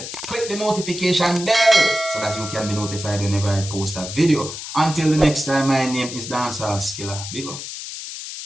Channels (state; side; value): noise; left; hiss, 9 dB below the sound